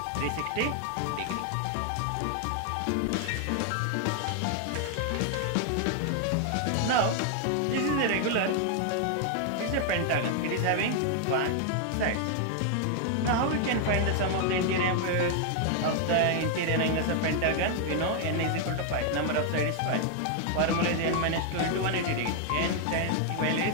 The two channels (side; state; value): both; different; correlation 0.00